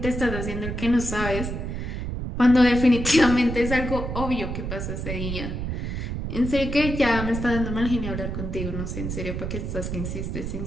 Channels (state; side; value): noise; right; rumble, 4 dB below the sound